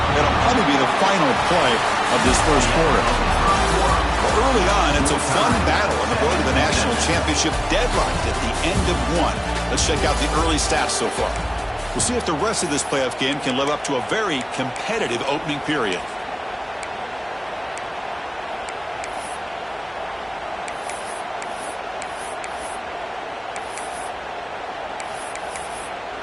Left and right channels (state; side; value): identical; both; correlation 1.00